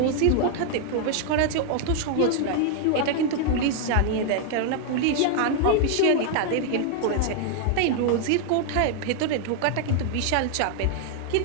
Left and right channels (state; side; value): different; both; correlation 0.00